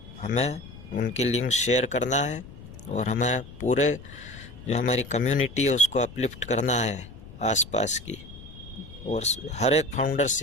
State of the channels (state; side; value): noise; left; rumble, 16 dB below the sound